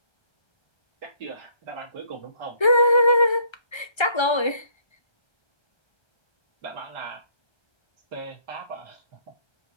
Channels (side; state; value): right; late; 1.3 ms